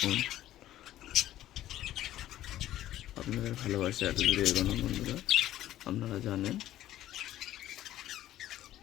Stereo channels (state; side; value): quieter; right; 13.5 dB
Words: আপনাদের ভালোবাসা এত দূরে এগোনো বন্ধুরা, আপনারা জানেন।